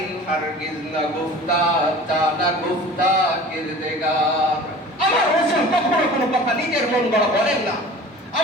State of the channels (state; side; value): normal; both; correlation 0.41